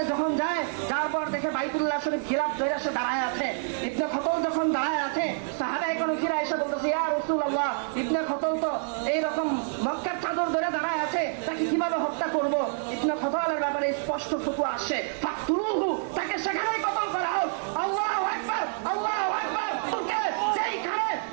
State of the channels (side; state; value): left; silent; 60 dB below the other